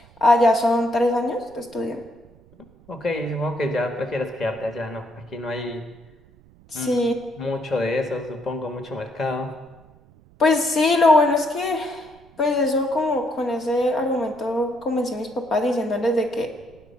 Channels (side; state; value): right; noise; rumble, 27 dB below the sound